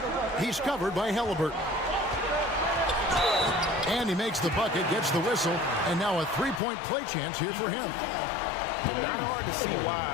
He's covered by Halliburton. And he makes the bucket, gets the whistle, and now a 3-point play chance here for him. And not hard to see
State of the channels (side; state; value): right; drops out; at 6.6 s